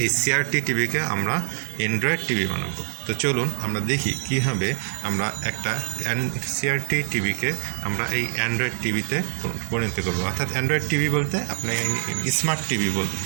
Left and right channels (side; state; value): left; silent; digital silence